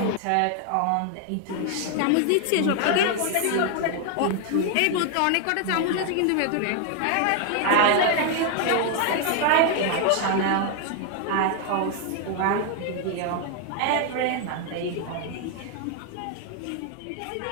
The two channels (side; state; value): both; different; correlation 0.00